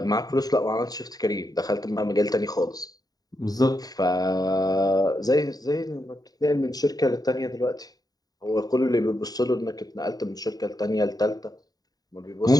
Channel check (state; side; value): late; right; 0.18 ms